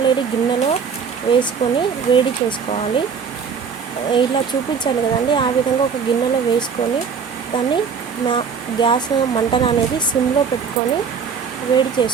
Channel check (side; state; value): left; quieter; 6.2 dB